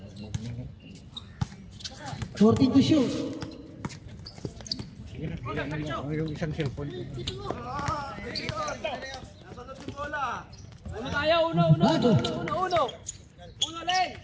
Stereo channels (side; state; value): both; identical; correlation 1.00